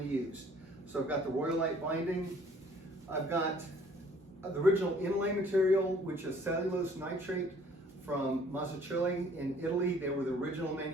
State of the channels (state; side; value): normal; both; correlation 0.56